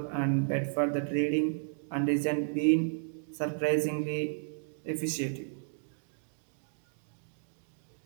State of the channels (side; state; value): left; silent; digital silence